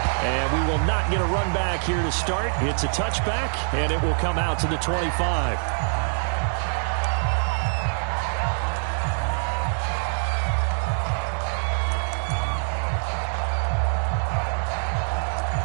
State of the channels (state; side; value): silent; left; digital silence